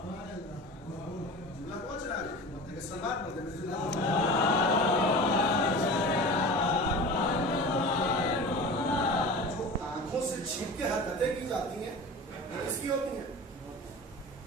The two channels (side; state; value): both; normal; correlation 0.34